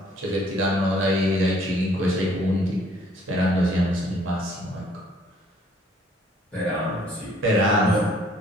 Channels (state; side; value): normal; both; correlation 0.61